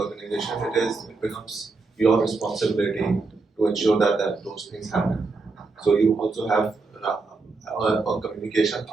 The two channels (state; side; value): quieter; left; 4.0 dB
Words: it becomes your responsibility to ensure that those things happen. So you also have a communication,